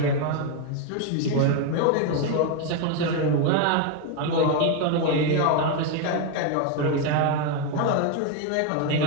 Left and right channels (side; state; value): both; different; correlation 0.02